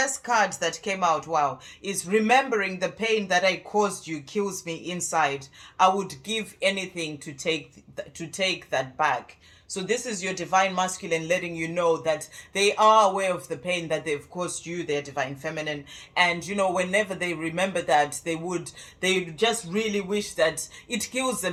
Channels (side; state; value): both; identical; correlation 1.00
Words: card that came out, wow, is remembering the pain that I caused you kills me inside. I would give anything to take that back. So this is your divine masculine letting you know that they are aware of the pain that they've caused you, their divine feminine. And whenever they remember that, they just really wish that it kills